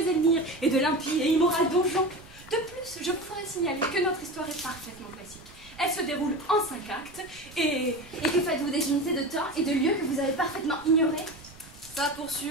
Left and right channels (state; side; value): noise; right; rumble, 22 dB below the sound